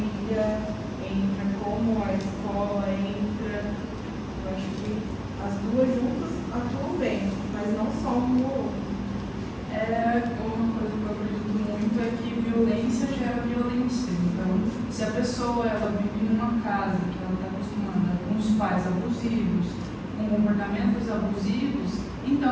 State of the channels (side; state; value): both; identical; correlation 1.00